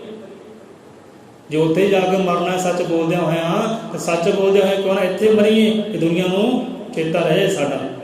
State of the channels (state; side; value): identical; both; correlation 1.00